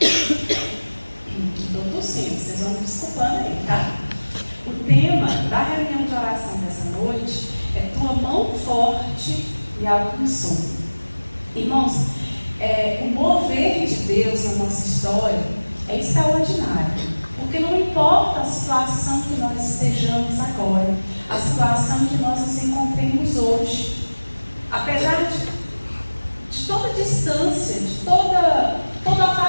tossindo, vocês vão me desculpando aí, tá? O tema da reunião de oração dessa noite é Tua mão forte me alcançou. Irmãos, o mover de Deus na nossa história é extraordinário, porque não importa a situação que nós estejamos agora, a situação que nós nos encontremos hoje, apesar de toda distância, de todo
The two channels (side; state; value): both; inverted; correlation -1.00